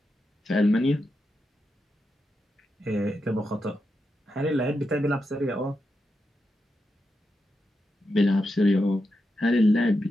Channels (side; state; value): both; normal; correlation 0.87